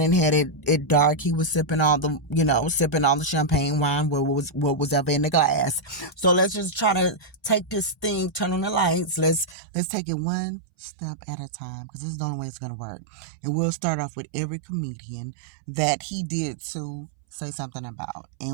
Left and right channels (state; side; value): drops out; left; at 9.6 s